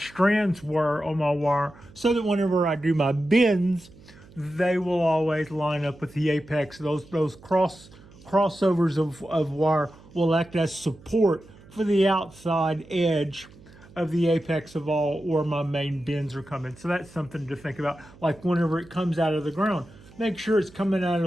were on my wire, so that whenever I do my bends, they will always line up with the apex. Those crossovers of wire will act as support for the outside edge of the apex of all where my main bends are coming. So that's something to think about. Like whenever it comes out of the ground, make sure it's coming out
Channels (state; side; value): noise; right; hum, 23 dB below the sound